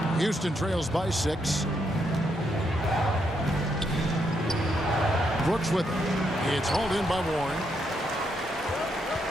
Houston trails by 6. Brooks with it. It's hauled in by Warren.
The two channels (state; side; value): normal; both; correlation 0.78